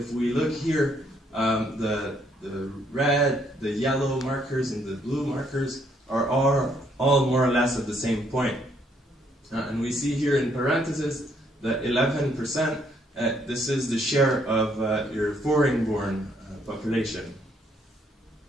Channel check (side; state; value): both; normal; correlation 0.69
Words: we look here, the red, the yellow markers, and the blue markers are all more or less at the same point. And we see here in parentheses the 11%, this is the share of your foreign-born population.